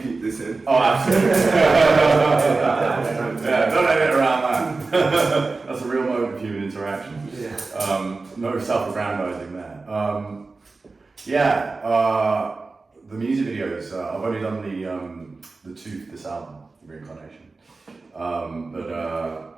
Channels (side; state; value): left; quieter; 3.8 dB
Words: keep this in. Oh, absolutely. Yeah, don't edit around that. That's a real moment of human interaction. Yeah. No self-aggrandizing there. The music videos. I've only done the two for this album, Reincarnation. But